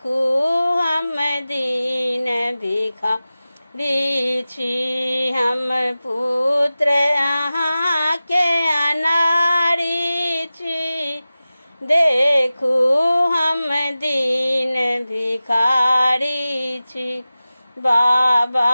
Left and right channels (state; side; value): inverted; both; correlation -0.96